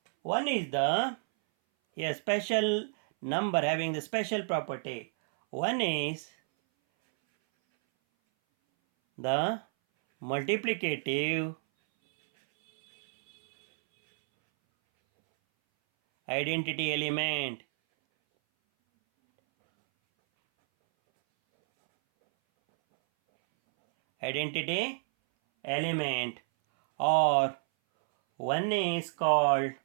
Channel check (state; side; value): silent; left; 58 dB below the other